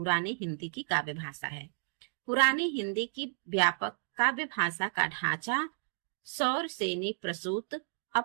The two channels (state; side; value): silent; left; digital silence